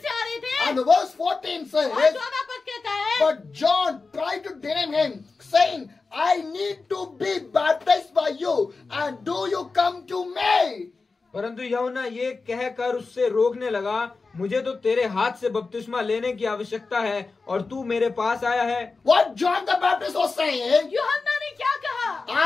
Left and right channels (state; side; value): quieter; right; 4.1 dB